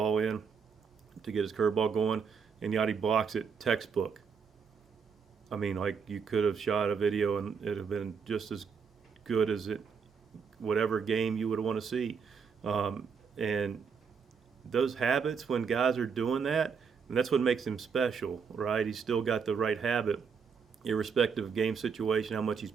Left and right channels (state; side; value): quieter; left; 6.1 dB